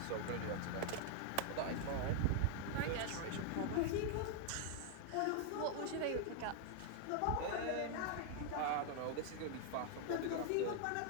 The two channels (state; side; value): different; both; correlation 0.00